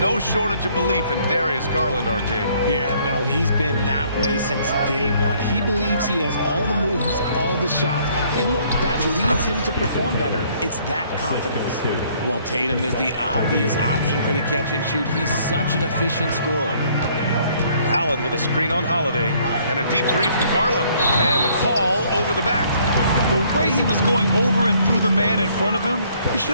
shortage of belief in Darius Garland, RJ. Yeah, no, he's been that way since day one. He believes he has all the moves, all the shots. And look, that leads him to perform better. It's that confidence. Well, Tatum is the obvious option for the catch and shoot. He's such an efficient scorer. Allen with a screen on Holiday. And a deep 3 from Garland. And the call over the back. The way he was going over and through the man in front of him, he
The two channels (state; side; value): inverted; both; correlation -0.63